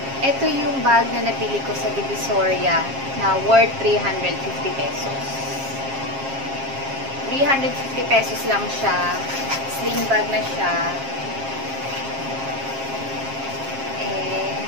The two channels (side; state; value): left; late; 7.4 ms